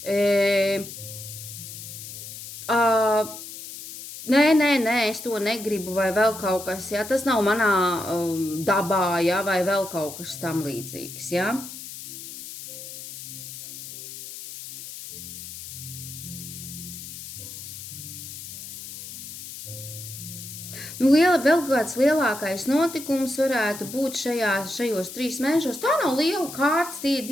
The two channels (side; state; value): left; noise; hiss, 11 dB below the sound